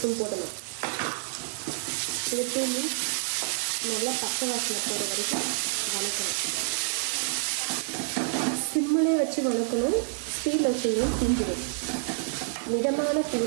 போடணும். இது நல்லா பச்சை வாசனை போகிற வரைக்கும் வணக்கணும். சிம்மிலே வச்சு வணக்கணும். ஸ்டீல் வச்சிங்கன்னா தீஞ்சிடும். மிதமான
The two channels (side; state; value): left; silent; 59 dB below the other